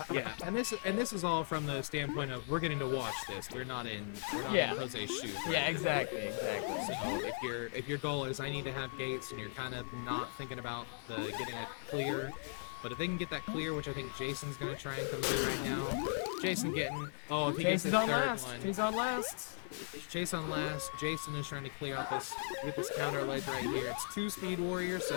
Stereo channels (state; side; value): silent; right; 52 dB below the other